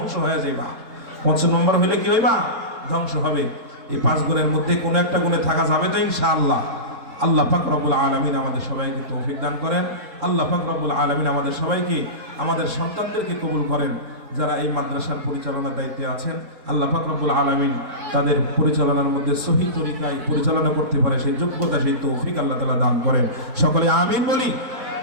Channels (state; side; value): late; left; 3.7 ms